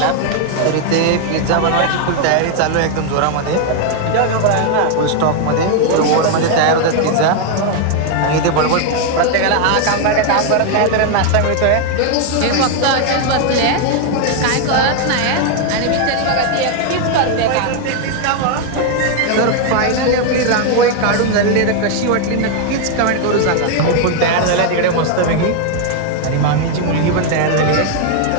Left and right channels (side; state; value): both; different; correlation 0.00